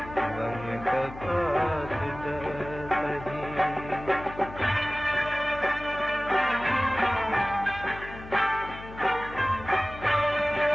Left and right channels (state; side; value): noise; left; hum, 14 dB below the sound